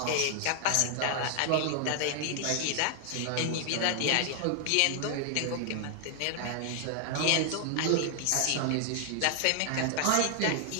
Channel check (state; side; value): different; both; correlation 0.00